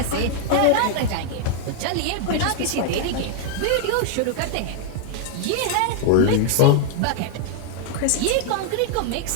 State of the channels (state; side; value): different; both; correlation 0.00